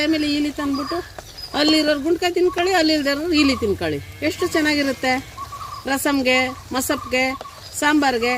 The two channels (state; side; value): identical; both; correlation 1.00